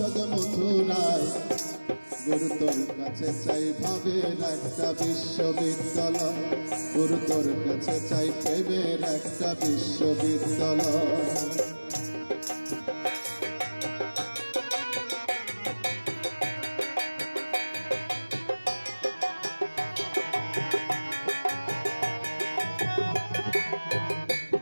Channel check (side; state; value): both; inverted; correlation -1.00